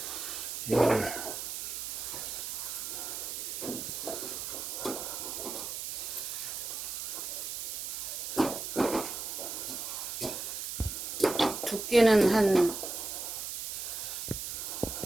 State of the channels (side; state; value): right; noise; hiss, 5 dB below the sound